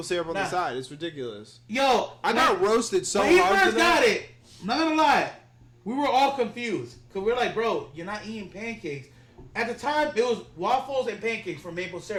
syrup on the side. It's ridiculous. Yo, I got roasted so hard. When he first got it, I'm not gonna lie, we were all confused because we're like, bro, you're not eating pancakes. At the time, it was waffles and pancakes for maple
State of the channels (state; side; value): identical; both; correlation 1.00